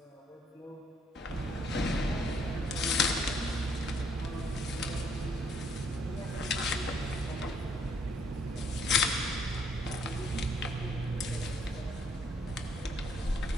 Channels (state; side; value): normal; both; correlation 0.67